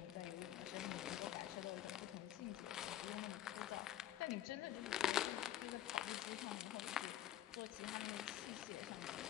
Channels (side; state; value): right; quieter; 12.3 dB